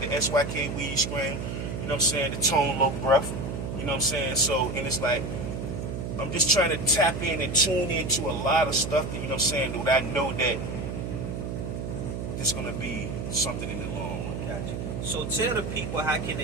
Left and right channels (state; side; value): noise; right; hum, 4 dB below the sound